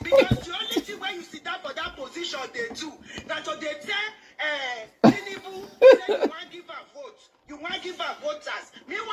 Because the only thing when you sit down for that position, they do. That's what they tell Tinubu, say you want to give a vote. You want to give her voters.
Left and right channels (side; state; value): both; identical; correlation 1.00